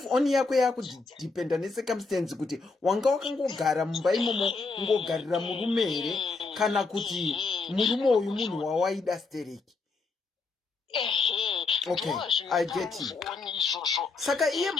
on yako yakudipenda necircumstance kuti wanga wakangogara mumba imomo ungogarira murume here kana kuti murume uyu munhu wawaida stereki. Okay, I get it. Saka iye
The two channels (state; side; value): quieter; right; 4.0 dB